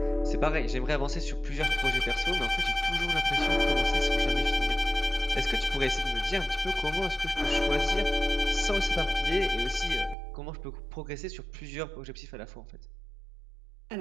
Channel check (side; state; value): left; drops out; at 10.2 s